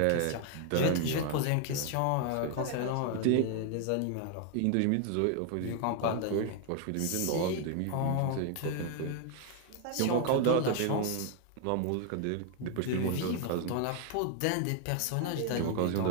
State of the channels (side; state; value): both; different; correlation 0.00